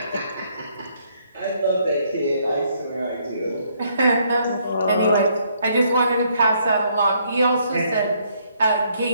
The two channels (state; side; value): inverted; both; correlation -0.69